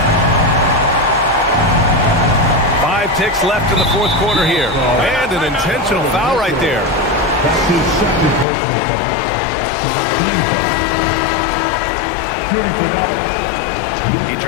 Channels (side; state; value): right; drops out; at 8.5 s